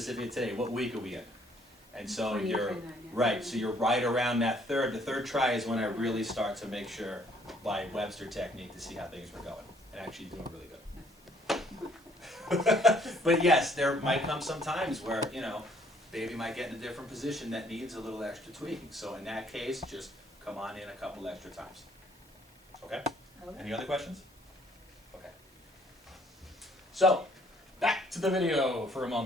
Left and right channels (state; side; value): normal; both; correlation 0.63